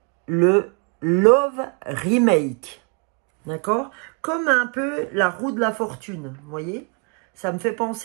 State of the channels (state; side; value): quieter; left; 35.0 dB